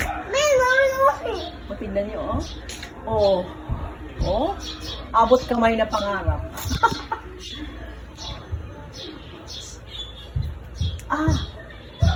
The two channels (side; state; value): both; identical; correlation 1.00